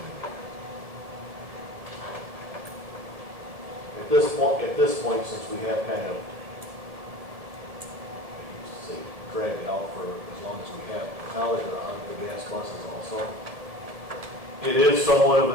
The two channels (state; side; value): late; left; 1.7 ms